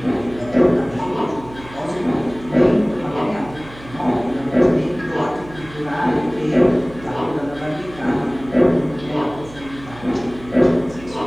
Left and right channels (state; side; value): noise; right; hum, 19 dB below the sound